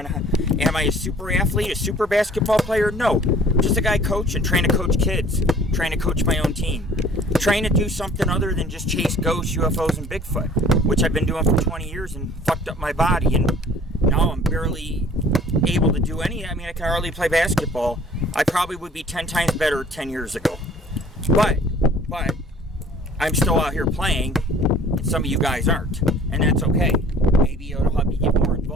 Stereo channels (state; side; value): normal; both; correlation 0.52